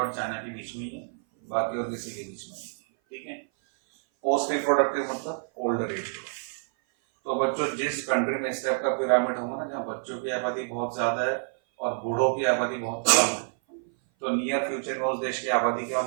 और चाइना के बीच में ही है, बाकी और किसी के बीच में नहीं, ठीक है। पोस्ट रिप्रोडक्टिव मतलब ओल्डर एज। तो बच्चों, जिस कंट्री में इस टाइप का पिरामिड होगा ना, जहाँ बच्चों की आबादी बहुत ज्यादा है और बूढ़ों की आबादी बहुत कम है, तो नियर फ्यूचर में उस देश की आबादी क्या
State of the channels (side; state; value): left; silent; 57 dB below the other